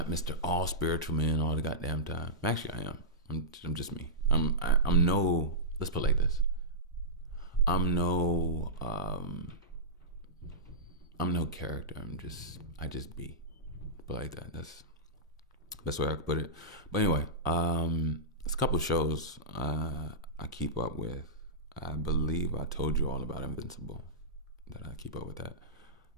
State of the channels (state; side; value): normal; both; correlation -0.15